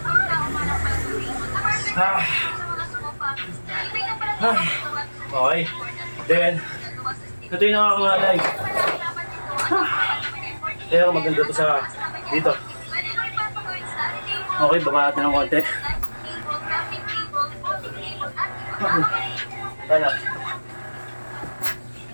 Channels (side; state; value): both; inverted; correlation -1.00